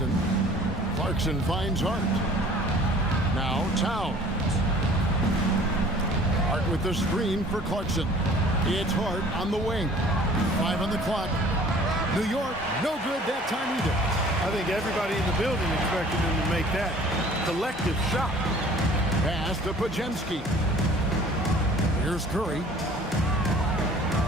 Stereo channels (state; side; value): normal; both; correlation 0.50